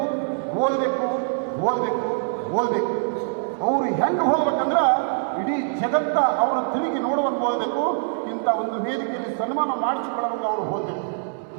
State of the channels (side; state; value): left; silent; digital silence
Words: ಓದಬೇಕು ಓದಬೇಕು ಓದಬೇಕು. ಅವರು ಹೆಂಗೆ ಹೋಗ್ಬೇಕಂದ್ರೆ ಇಡೀ ಜಗತ್ತ ಅವರ ತಿರುಗಿ ನೋಡುವಂಗೆ ಓದಬೇಕು. ಇಂಥ ಒಂದು ವೇದಿಕೆಯಲ್ಲಿ ಸನ್ಮಾನ ಮಾಡಿಸಿಕೊಳ್ಳುವಂಗೆ ಅವರು ಓದಬೇಕು.